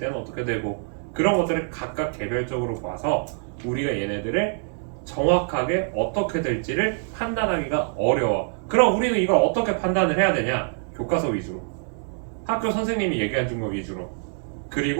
어떻게 되고 그런 것들을 각각 개별적으로 봐서 우리가 얘네들을 정확하게 어떻게 될지를 판단하기가 어려워. 그럼 우리는 이걸 어떻게 판단을 해야 되냐? 교과서 위주로, 학교 선생님이 얘기해 준 거 위주로,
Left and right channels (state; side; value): silent; left; 62 dB below the other